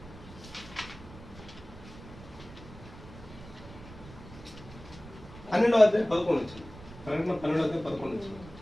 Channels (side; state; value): right; noise; rumble, 17 dB below the sound